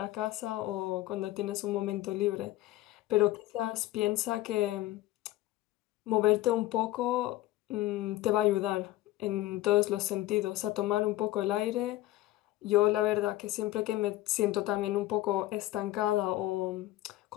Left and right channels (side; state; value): right; quieter; 16.0 dB